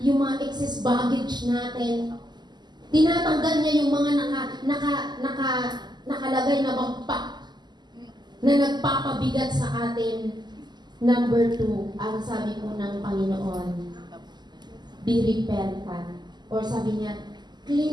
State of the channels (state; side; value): late; left; 0.21 ms